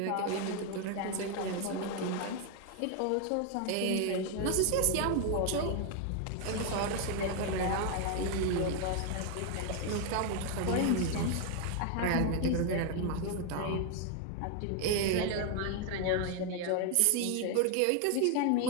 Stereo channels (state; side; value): different; both; correlation 0.01